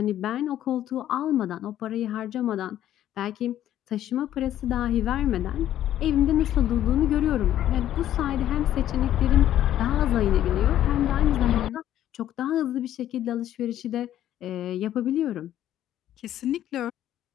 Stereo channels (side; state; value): right; quieter; 11.9 dB